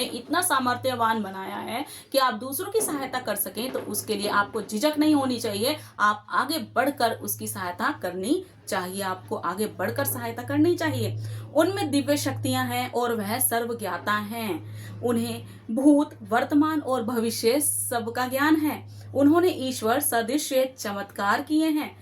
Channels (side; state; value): both; identical; correlation 1.00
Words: इतना सामर्थ्यवान बनाया है कि आप दूसरों की सहायता कर सकें तो उसके लिए आपको झिझक नहीं होनी चाहिए। आप आगे बढ़कर उसकी सहायता करनी चाहिए। आपको आगे बढ़कर सहायता करनी चाहिए। उनमें दिव्य शक्तियां हैं और वह सर्वज्ञाता हैं। उन्हें भूत, वर्तमान और भविष्य सबका ज्ञान है। उन्होंने ईश्वर सदृश चमत्कार किए हैं